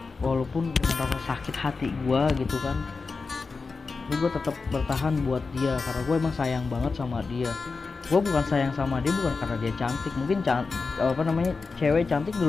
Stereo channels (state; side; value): quieter; right; 4.4 dB